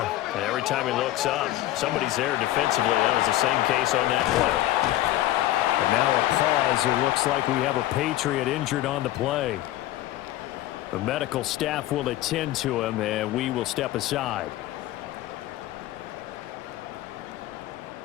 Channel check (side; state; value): right; quieter; 15.0 dB